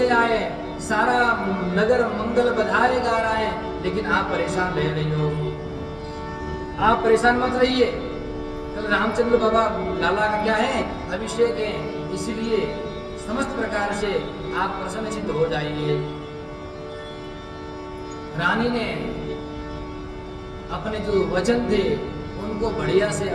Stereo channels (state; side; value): identical; both; correlation 1.00